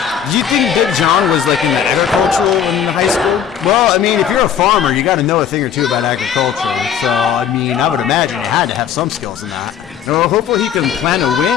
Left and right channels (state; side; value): quieter; right; 8.6 dB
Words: Do you think Big John was like in the agricultural in high school? Well, I mean, if you're a farmer, you got to know a thing or two about agriculture. So, I mean, I would imagine you had to have some skills in that. Well, hopefully he can plan a